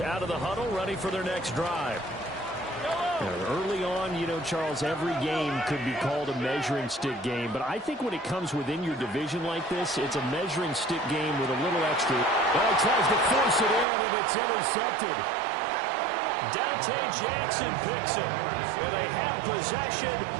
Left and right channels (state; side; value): drops out; left; at 13.9 s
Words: of the huddle, ready for their next drive. Early on, Charles, every game could be called a measuring stick game, but I think when it comes within your division like this, it's a measuring stick game with a little extra. Well, he tries to force it in, and it's intercepted. Jackson picks it. And they have possession,